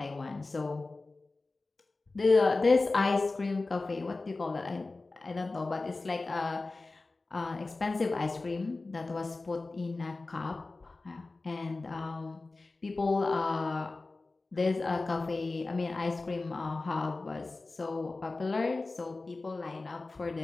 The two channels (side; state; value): right; quieter; 3.4 dB